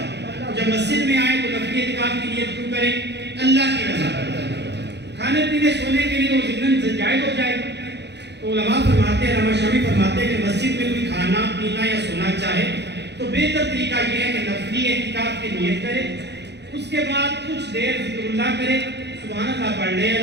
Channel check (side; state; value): left; late; 0.50 ms